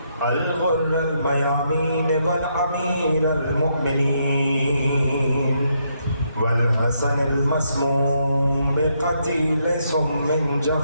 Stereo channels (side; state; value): both; inverted; correlation -0.77